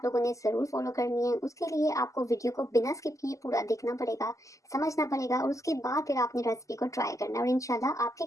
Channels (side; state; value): right; late; 0.16 ms